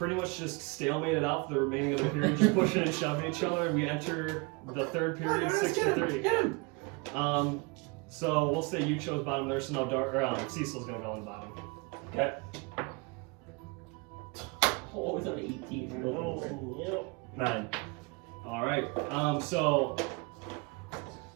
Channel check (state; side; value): quieter; left; 29.1 dB